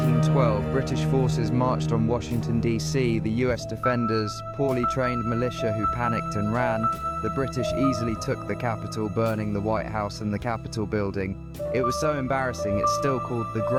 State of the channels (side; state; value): both; identical; correlation 1.00